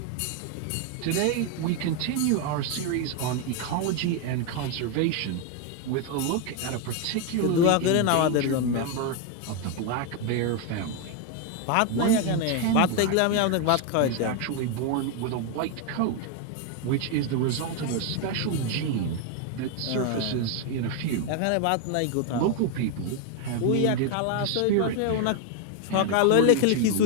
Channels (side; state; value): both; different; correlation 0.01